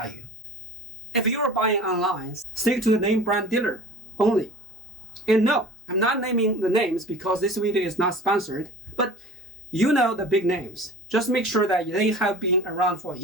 If you're buying online, stick to the name brand dealer only. And no, I'm not naming the names because this video is not sponsored, but you know the big names. Just make sure that they have been around for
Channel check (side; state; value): both; normal; correlation 0.41